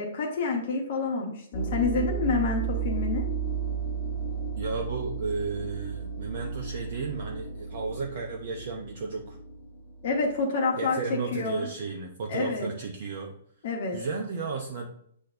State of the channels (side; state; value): both; inverted; correlation -0.37